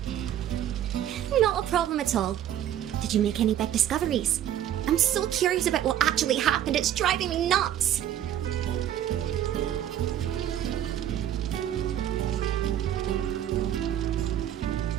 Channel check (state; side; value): quieter; left; 11.1 dB